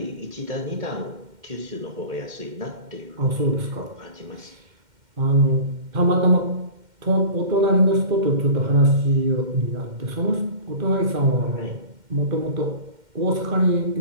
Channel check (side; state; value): left; late; 2.1 ms